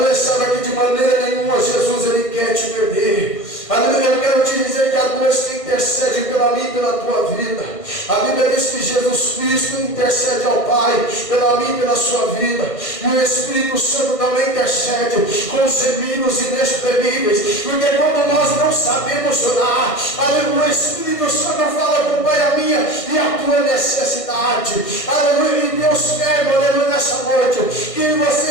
Sabe que de maneira nenhuma Jesus Ele quer te perder. Aleluia. Eu quero te dizer que a Deus que intercede pela minha e pela tua vida. A Bíblia diz que Jesus Cristo intercede ao Pai pela minha e pela sua vida. E o Espírito Santo também intercede com gemidos inexprimíveis. Porque quando nós não sabemos orar, aleluia, o Espírito Santo fala com o Pai a minha e a tua necessidade. Aleluia. E Deus quer, aleluia, nessa noite, que você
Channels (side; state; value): right; late; 1.5 ms